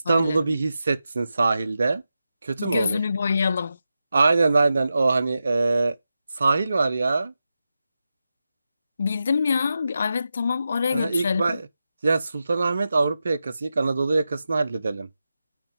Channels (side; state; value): both; inverted; correlation -0.90